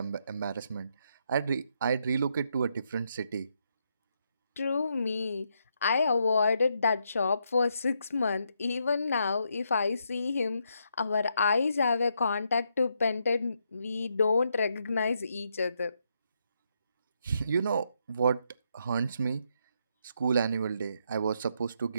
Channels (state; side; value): inverted; both; correlation -0.78